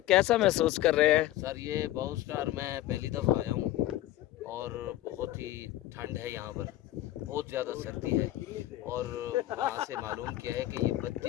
محسوس کر رہے ہیں؟ سر یہ باؤ سٹار میں پہلی دفعہ آیا ہوں اور بہت ہی ٹھنڈ ہے یہاں پر, بہت زیادہ سردی ہے. اور وہاں سے معلوم کیا ہے کہ یہ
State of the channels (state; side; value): quieter; right; 15.0 dB